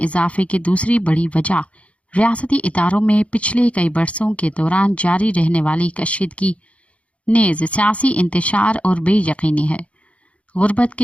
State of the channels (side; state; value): right; late; 0.063 ms